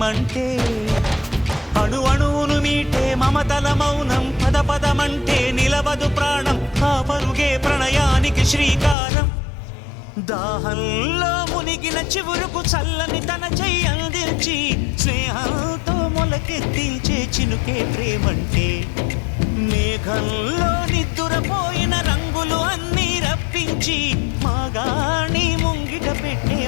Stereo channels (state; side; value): drops out; right; at 9.0 s